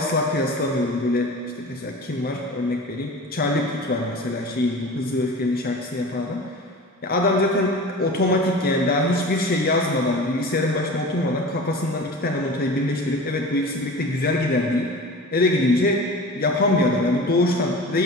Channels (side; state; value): both; normal; correlation 0.36